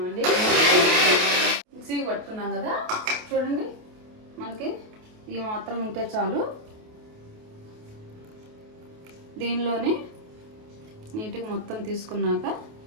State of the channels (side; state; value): left; late; 28 ms